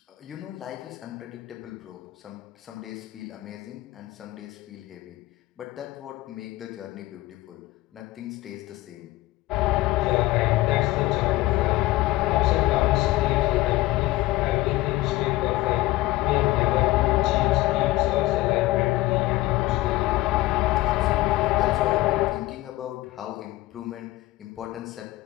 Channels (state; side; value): quieter; right; 18.1 dB